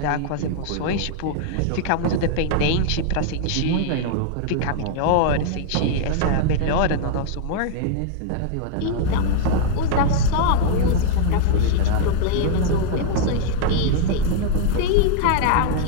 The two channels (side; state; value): both; different; correlation 0.00